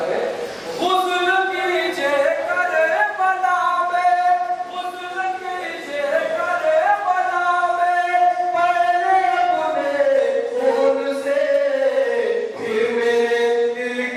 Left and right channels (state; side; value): identical; both; correlation 1.00